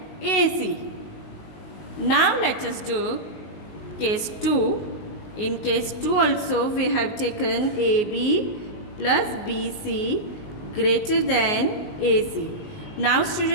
AC. Now let us do case 2. In case 2 also we have taken AB plus BC greater than AC. Now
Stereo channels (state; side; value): late; right; 19 ms